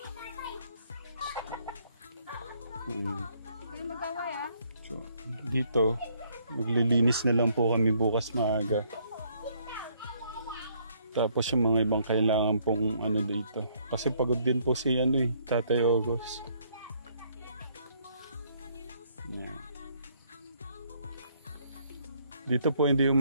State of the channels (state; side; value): inverted; both; correlation -0.67